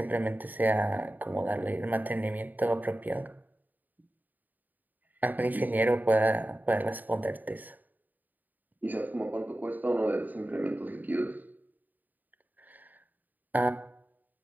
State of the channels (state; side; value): late; left; 0.085 ms